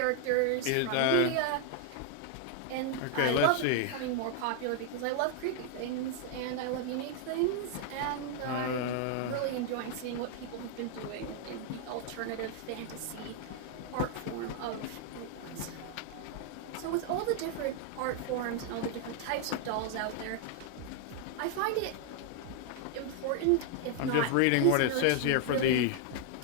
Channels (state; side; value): different; both; correlation 0.00